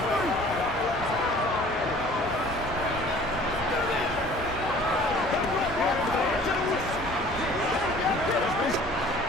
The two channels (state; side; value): normal; both; correlation 0.50